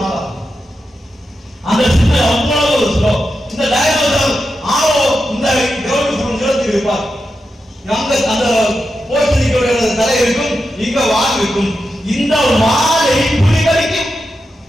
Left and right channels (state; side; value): normal; both; correlation 0.89